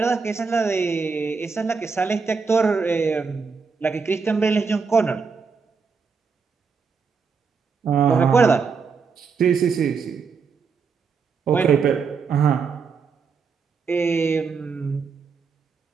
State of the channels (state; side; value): quieter; left; 5.3 dB